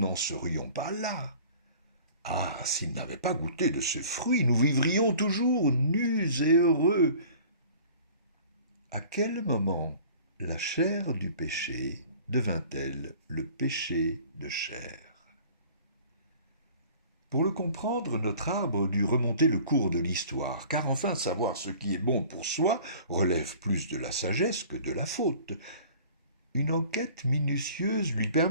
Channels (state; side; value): inverted; both; correlation -0.47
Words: serions pas là. Ah, s'il n'avait pas goûté de ce fruit, nous vivrions toujours nus et heureux. À quel moment la chair du péché devint-elle le péché de chair ? Pour le comprendre, notre arbre dut remonter le cours de l'histoire, car enfin savoir ce qui est bon pour soi relève plus de la sagesse que de la faute. Une enquête minutieuse lui